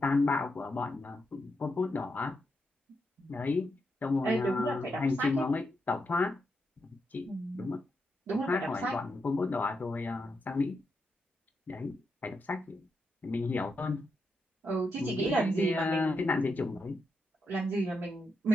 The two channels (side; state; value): both; normal; correlation 0.84